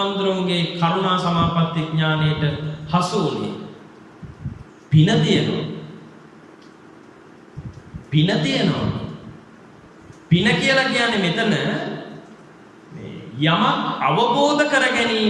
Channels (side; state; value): both; identical; correlation 1.00